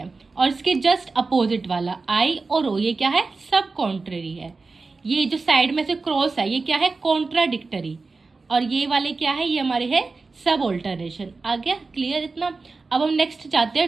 और इसके जस्ट अपोजिट वाला आई और ओ, ये क्या है, सब कॉन्ट्रेरी है। ये जो साइड में से क्रॉस है, ये क्या है, कॉन्ट्राडिक्टरी, और ये वाले क्या है, ये हमारे है सब ऑल्टरनेशन। आ गया क्लियर इतना। अब हम नेक्स्ट जाते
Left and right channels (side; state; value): left; quieter; 4.0 dB